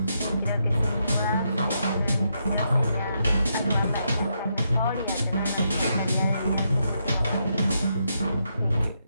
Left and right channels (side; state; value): both; inverted; correlation -0.80